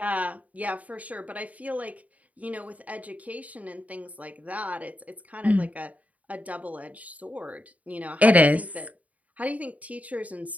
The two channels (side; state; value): left; late; 0.071 ms